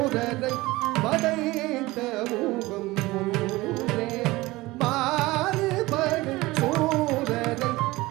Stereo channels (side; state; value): left; quieter; 20.2 dB